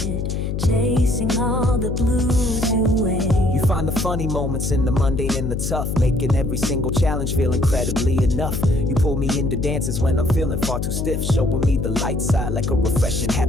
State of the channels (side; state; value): left; noise; hum, 2 dB below the sound